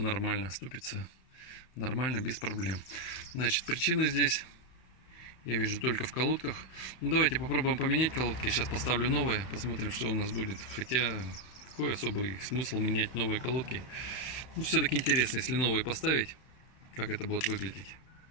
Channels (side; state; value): right; late; 31 ms